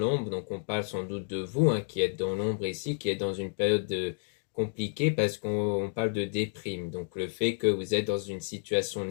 donc on parle sans doute de vous, hein, qui êtes dans l'ombre ici, qui êtes dans une période compliquée parce qu'on parle de déprime. Donc le fait que vous êtes dans une situation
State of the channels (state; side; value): silent; right; digital silence